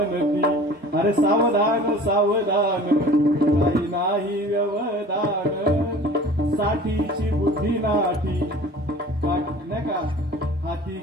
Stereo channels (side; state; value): both; normal; correlation 0.43